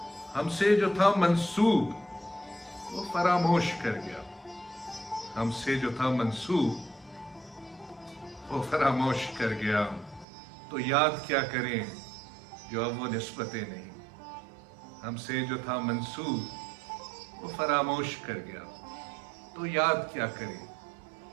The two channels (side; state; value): left; drops out; at 10.2 s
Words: हमसे जो था मंसूब वो फरामोश कर गया, हमसे जो था मंसूब वो फरामोश कर गया। तो याद क्या करें जो अब वो निस्बतें नहीं। हमसे जो था मंसूब वो फरामोश कर गया, तो याद क्या करें